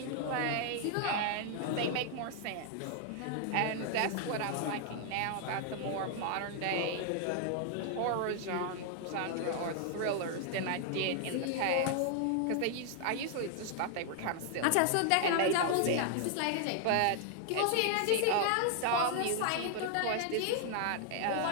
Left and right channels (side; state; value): both; different; correlation 0.00